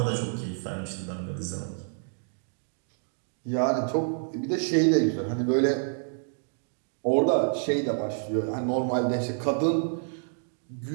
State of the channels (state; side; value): silent; left; digital silence